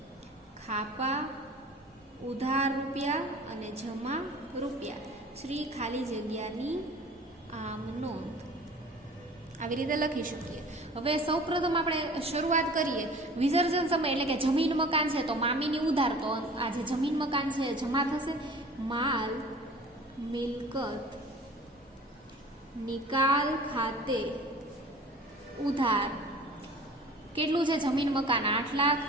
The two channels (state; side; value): normal; both; correlation 0.44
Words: ખાપા, ઉધાર રૂપિયા અને જમા રૂપિયા, શ્રી ખાલી જગ્યાની આમ નોંધ. આવી રીતે લખી શકીએ. હવે સૌપ્રથમ આપણે શરૂઆત કરીએ. વિસર્જન સમય એટલે કે જમીન મકાન છે તો મામીની ઉધાર, તો આ જે જમીન મકાન છે જમા થશે. માલ મિલકત નિકાલ ખાતે ઉધાર કેટલું છે? જમીન મકાન 8 લાખ.